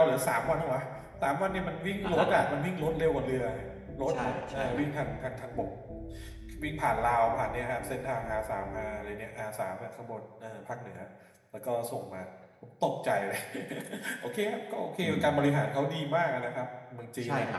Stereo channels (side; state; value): both; identical; correlation 1.00